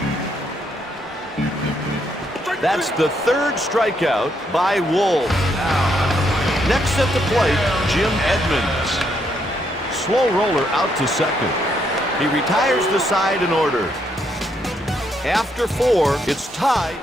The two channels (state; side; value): normal; both; correlation 0.75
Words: That's the third strikeout by Wolf. Next at the plate, Jim Edmonds. Slow roller out to second. He retires the side in order. After 4, it's tied.